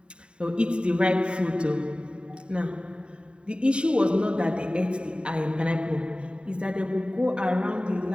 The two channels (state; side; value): late; left; 0.053 ms